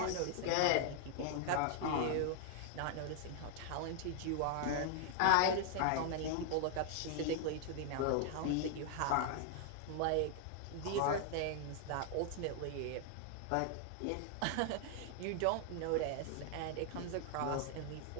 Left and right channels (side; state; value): both; different; correlation 0.00